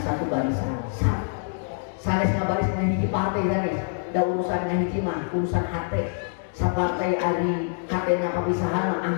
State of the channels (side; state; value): right; silent; digital silence